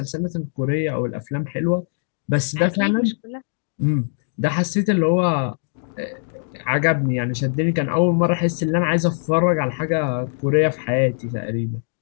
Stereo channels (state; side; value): silent; right; digital silence